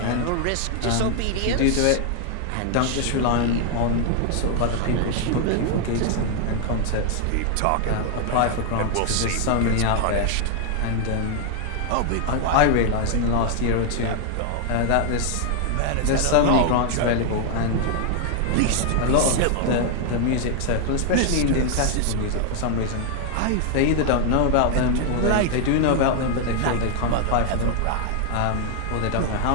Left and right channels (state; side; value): different; both; correlation 0.00